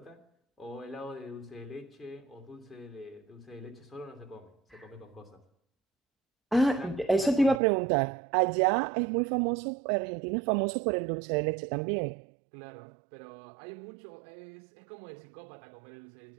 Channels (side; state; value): left; drops out; at 7.6 s